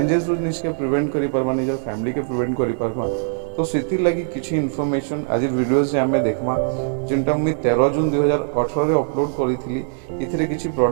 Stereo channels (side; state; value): left; silent; digital silence